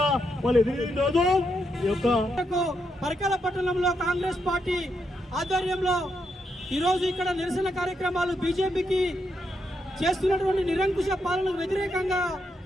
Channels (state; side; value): normal; both; correlation 0.81